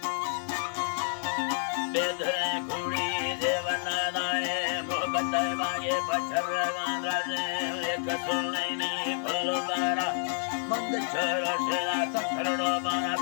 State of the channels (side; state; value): right; silent; 58 dB below the other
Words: बेधुरे कुड़ी देवना लाए मोहब्बत मांगे पछर गांधा से एक सोलैनी फलोदारा मंद चलो शेरा तकड़ो बना